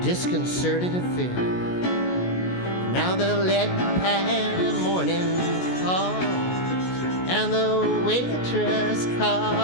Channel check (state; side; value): late; right; 16 ms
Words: affair. Now the lead pan morning calls, and the waitress